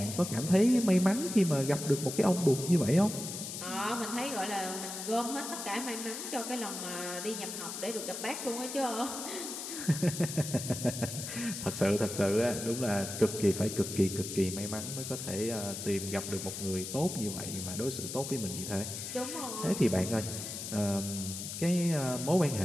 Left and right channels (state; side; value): noise; left; hiss, 7 dB below the sound